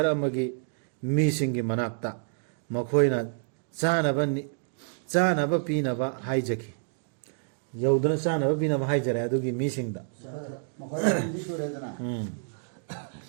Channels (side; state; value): left; silent; digital silence